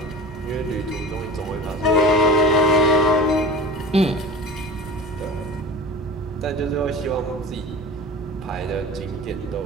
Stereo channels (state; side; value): normal; both; correlation 0.36